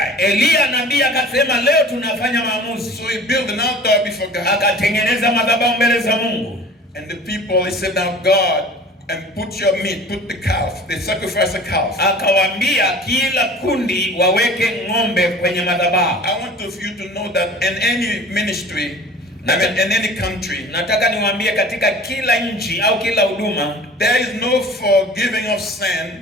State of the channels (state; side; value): normal; both; correlation 0.43